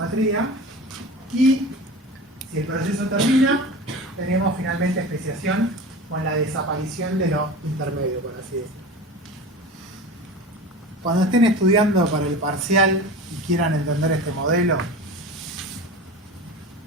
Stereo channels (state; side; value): normal; both; correlation 0.33